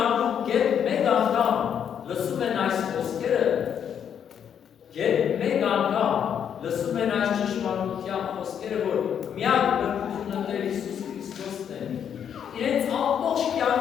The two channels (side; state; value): right; quieter; 8.5 dB